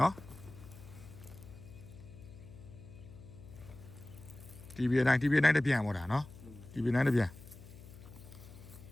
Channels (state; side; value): noise; left; hum, 17 dB below the sound